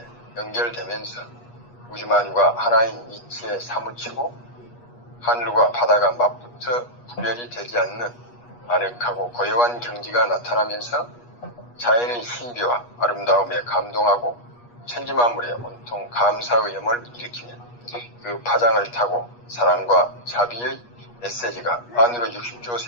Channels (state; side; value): late; right; 8.3 ms